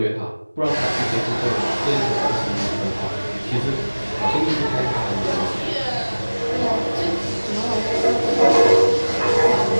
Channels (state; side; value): inverted; both; correlation -1.00